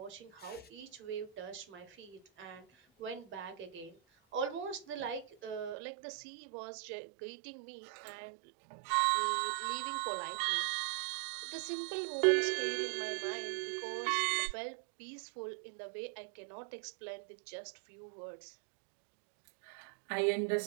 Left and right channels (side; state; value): left; drops out; at 5.8 s